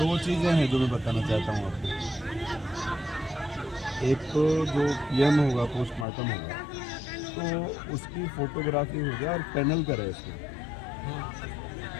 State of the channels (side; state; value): right; drops out; at 6.1 s